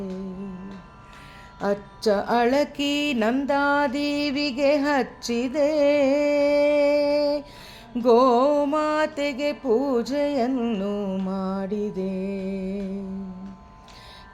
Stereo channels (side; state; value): both; identical; correlation 1.00